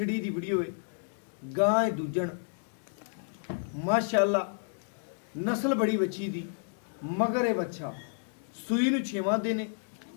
दी वीडियो है। गां है दूजन माशाअल्लाह नस्ल बड़ी बच्ची दी, मगर ये बच्चा सूई नूं 6वां दिन है,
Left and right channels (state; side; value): silent; right; digital silence